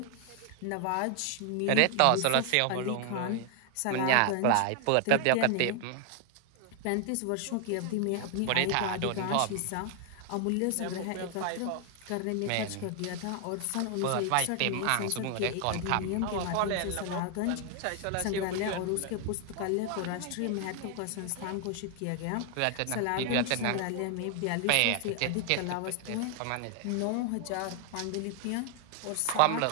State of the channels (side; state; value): both; different; correlation 0.00